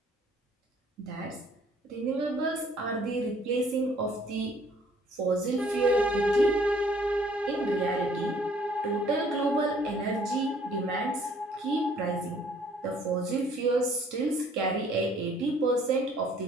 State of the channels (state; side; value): normal; both; correlation 0.59